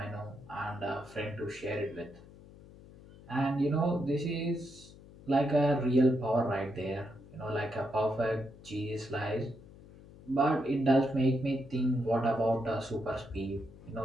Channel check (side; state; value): left; noise; hum, 20 dB below the sound